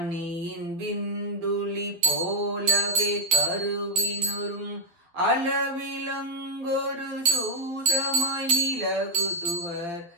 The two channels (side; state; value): left; late; 12 ms